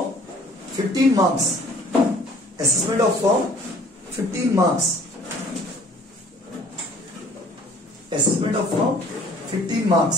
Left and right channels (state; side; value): normal; both; correlation 0.53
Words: 15 marks. Assessment of firm 15 marks. Assessment of firm 15 marks,